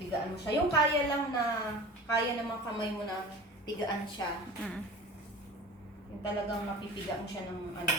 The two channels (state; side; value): normal; both; correlation 0.38